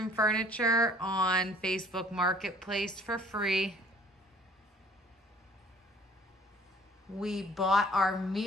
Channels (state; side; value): normal; both; correlation 0.55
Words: furniture on Facebook Marketplace for free. We bought our